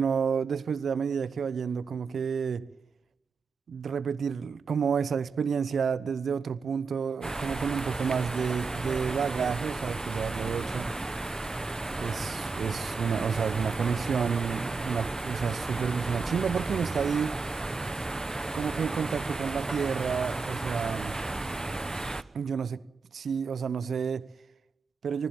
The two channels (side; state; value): left; quieter; 5.0 dB